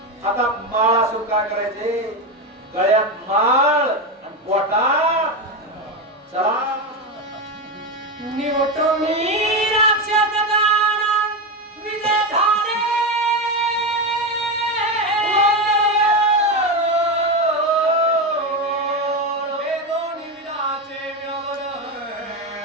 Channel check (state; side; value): normal; both; correlation 0.14